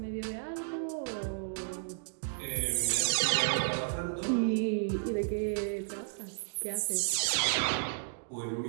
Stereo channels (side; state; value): left; silent; digital silence